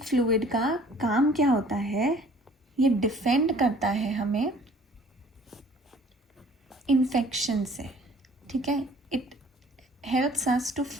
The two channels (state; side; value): normal; both; correlation 0.53